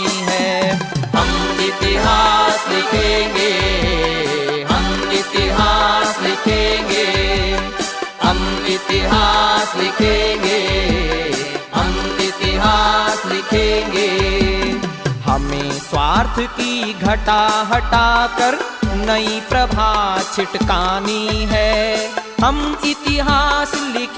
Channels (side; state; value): both; identical; correlation 1.00